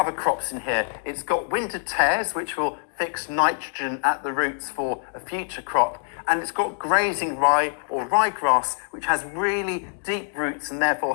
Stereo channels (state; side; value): silent; right; digital silence